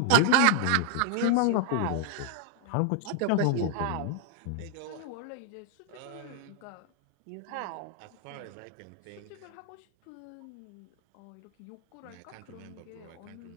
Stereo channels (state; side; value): different; both; correlation 0.00